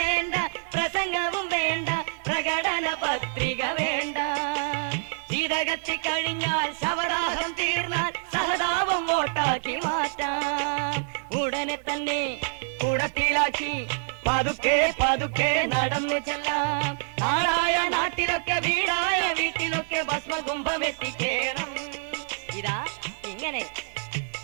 പ്രസംഗവും വേണ്ട, പ്രകടന പത്രിക വേണ്ട. ശീതകത്തി കഴിഞ്ഞാൽ ശവദാഹം തീർന്നാൽ സഹതാപം വോട്ടാക്കി മാറ്റാം. ഉടനെ തന്നെ കുടത്തിലാക്കി പതുക്കെ പതുക്കെ നടന്നു ചെല്ലാം. നാടായ നാട്ടിലൊക്കെ വീടായ വീട്ടിലൊക്കെ ഭസ്മകുംഭം എത്തിക്കേണം. ഇതാ ഇങ്ങനെ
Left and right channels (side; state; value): left; silent; digital silence